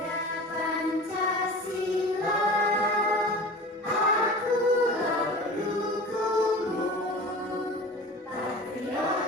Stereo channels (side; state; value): both; normal; correlation 0.37